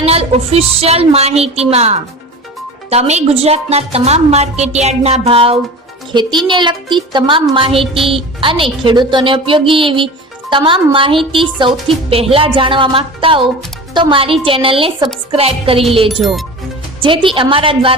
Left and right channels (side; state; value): both; normal; correlation 0.34